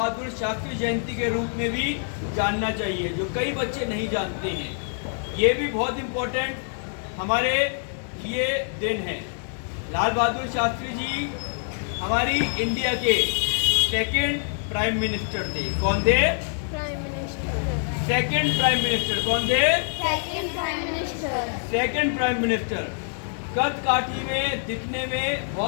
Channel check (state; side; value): silent; right; digital silence